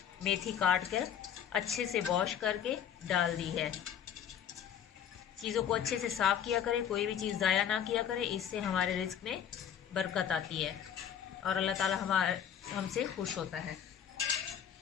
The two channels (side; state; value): right; quieter; 9.1 dB